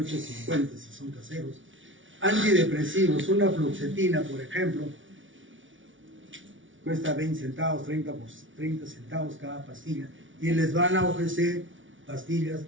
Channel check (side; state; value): left; late; 0.56 ms